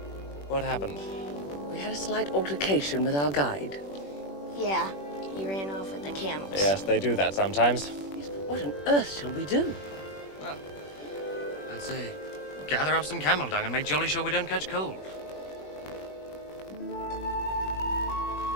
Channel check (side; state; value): right; late; 21 ms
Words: What happened? We had a slight altercation with our guide. Yeah, he ran off with the camels. Yes, they do that sometimes. Yes, but what on earth shall we do? Well, say? Gather up some camel dung and make jolly sure we don't catch cold.